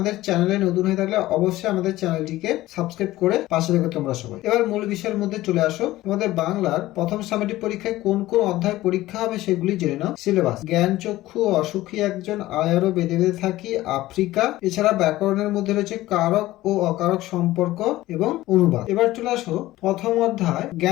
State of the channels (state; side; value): quieter; right; 16.6 dB